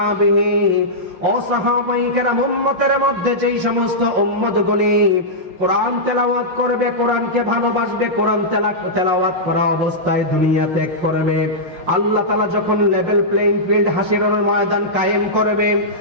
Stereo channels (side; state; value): left; late; 5.6 ms